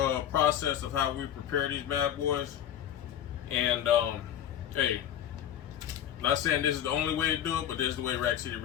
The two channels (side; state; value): right; quieter; 10.4 dB